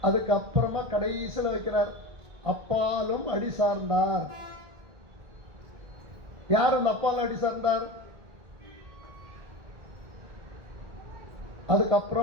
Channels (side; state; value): left; late; 1.9 ms